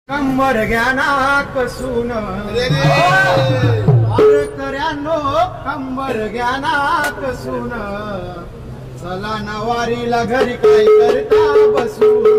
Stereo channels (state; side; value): identical; both; correlation 1.00